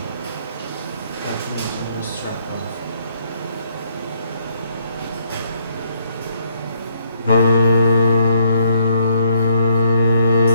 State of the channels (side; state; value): both; inverted; correlation -0.70